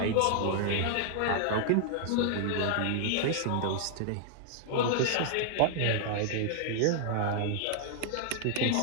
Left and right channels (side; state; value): both; different; correlation -0.01